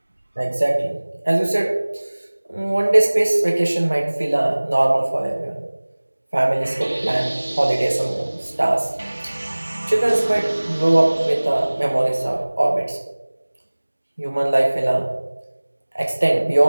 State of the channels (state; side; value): inverted; both; correlation -1.00